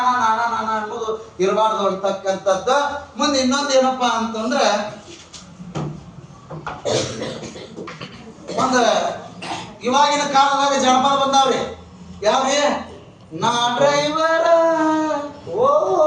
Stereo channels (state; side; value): identical; both; correlation 1.00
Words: ನಾನಾ ನಾನಾ ಅನ್ನೋದು ಇರಬಾರ್ದು ಅಂತಕ್ಕಂಥದ್ದು. ಮುಂದೆ ಇನ್ನೊಂದು ಏನಪ್ಪಾ ಅಂತಂದ್ರೆ ಒಂದು ಇವಾಗಿನ ಕಾಲದಾಗ ಜನಪದ ಬಂದಾವ್ರಿ. ಯಾವ್ರಿ? ನಾ ಡ್ರೈವರ ಓ